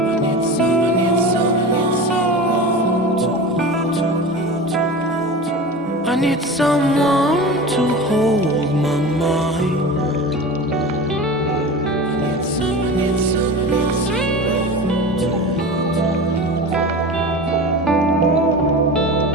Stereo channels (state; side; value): normal; both; correlation 0.31